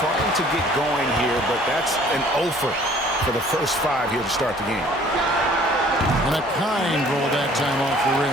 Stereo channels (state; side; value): normal; both; correlation 0.55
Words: to get going here, but that's an offer for the first 5 here to start the game. And a kind roll that time off the